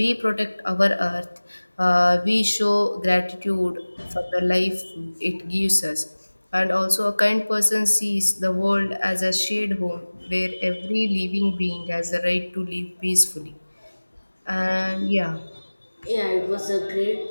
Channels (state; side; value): inverted; both; correlation -1.00